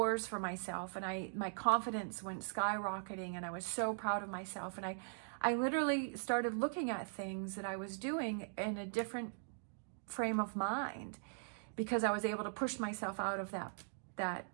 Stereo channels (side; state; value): left; silent; digital silence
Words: for myself, and my confidence went skyrocketing, and I was so proud of myself. And I literally started looking at things that I was doing in a different frame of mind because I was able to push myself out of that